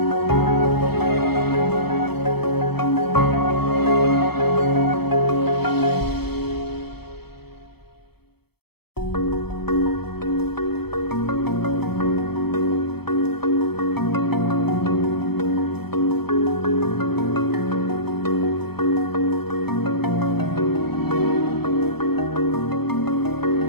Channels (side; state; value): right; late; 0.96 ms